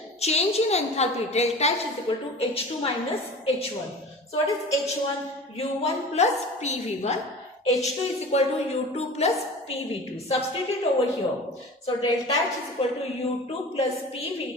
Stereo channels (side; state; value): both; normal; correlation 0.38